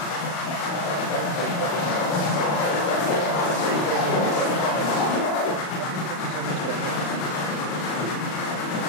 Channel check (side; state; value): right; late; 39 ms